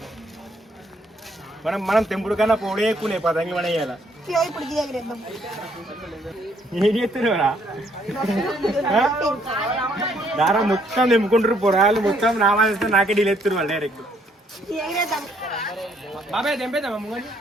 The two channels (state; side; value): normal; both; correlation 0.68